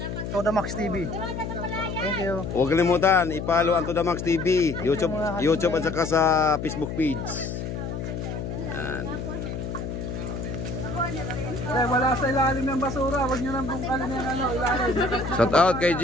Toda Max TV. Thank you. Huwag kalimutan, i-follow ang Toda Max TV, YouTube at saka sa Facebook page. Yan. Dahil wala sa ilalim ng basura, huwag nyo nang bungkalin yung ilalim. Shout out kay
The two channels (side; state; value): left; noise; hum, 5 dB below the sound